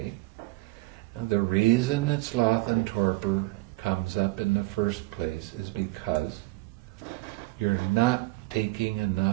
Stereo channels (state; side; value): quieter; left; 21.8 dB